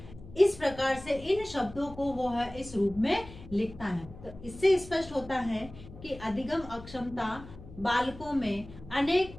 इस प्रकार से इन शब्दों को वो है इस रूप में लिखता है। तो इससे स्पष्ट होता है कि अधिगम अक्षमता बालकों में अनेक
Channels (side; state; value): left; noise; hum, 17 dB below the sound